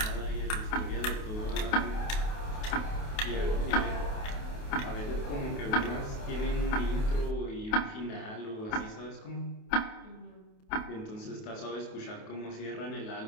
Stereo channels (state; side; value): late; right; 28 ms